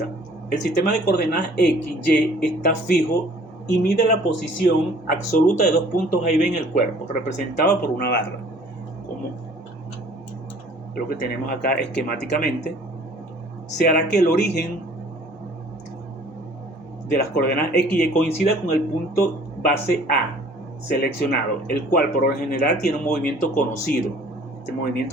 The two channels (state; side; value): normal; both; correlation 0.53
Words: El sistema de coordenadas X, Y está fijo y mide la posición absoluta de dos puntos A y B en el cuerpo, representada por una barra, como lo que tenemos acá esquemáticamente. Se hará que el origen de las coordenadas X y Y coincida con el punto base A seleccionado, el cual por lo general tiene un movimiento conocido. Este